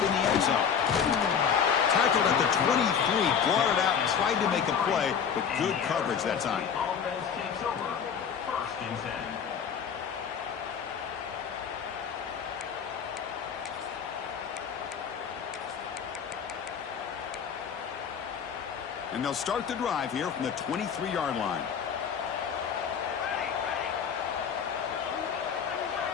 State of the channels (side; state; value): right; quieter; 7.3 dB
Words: in the end zone. Tackled at the 23, brought it out, tried to make a play, but good coverage that time. Offense takes over. First and 10. And they'll start the drive here from the 23-yard line.